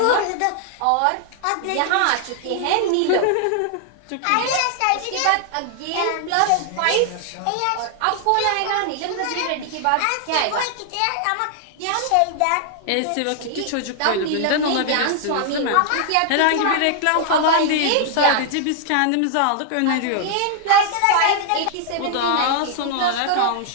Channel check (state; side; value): different; both; correlation 0.00